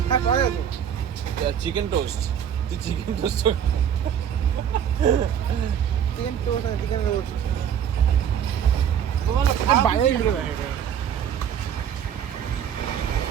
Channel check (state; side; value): quieter; left; 8.8 dB